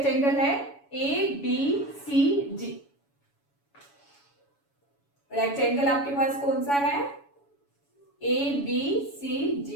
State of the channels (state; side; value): late; right; 7.1 ms